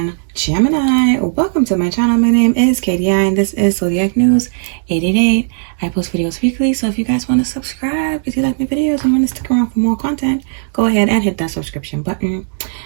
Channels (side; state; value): left; silent; digital silence